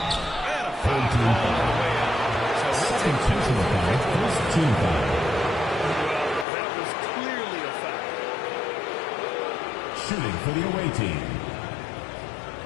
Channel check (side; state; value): right; drops out; at 6.5 s